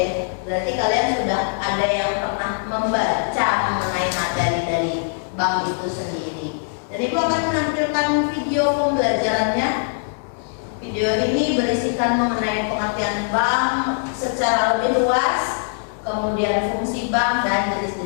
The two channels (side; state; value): right; silent; digital silence